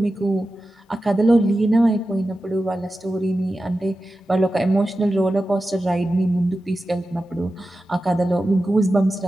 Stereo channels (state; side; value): normal; both; correlation 0.93